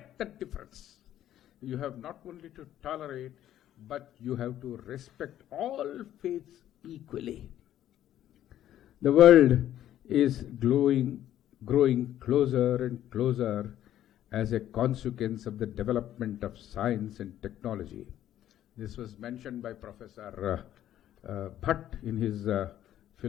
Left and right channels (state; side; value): quieter; right; 12.0 dB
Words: that difference. You have not only to tolerate, but you have to respect all faiths equally. The world is growing closer and closer as a consequence of the development of science and technology. This was mentioned by Professor Bhatt in his